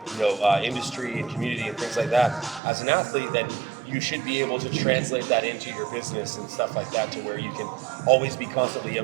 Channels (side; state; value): left; drops out; at 2.6 s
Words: industry and community and things like that, as an athlete, then you should be able to translate that into your business and stuff like that, to where you can always be constantly